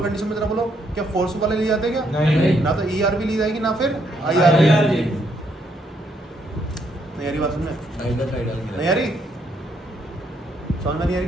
कंडीशन में जरा बोलो क्या फोर्स वाले लिए जाते हैं क्या, नहीं। ना तो ERV ली जाएगी ना फिर IRV। नहीं यारी बात सुनने, नहीं यारी समझ में नहीं आ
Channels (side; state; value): both; normal; correlation 0.73